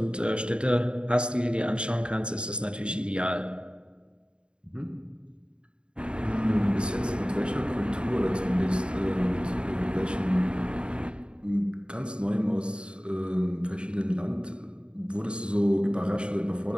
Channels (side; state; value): left; late; 0.053 ms